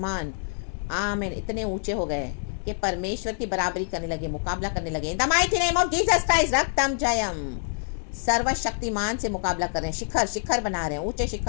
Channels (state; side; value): silent; right; digital silence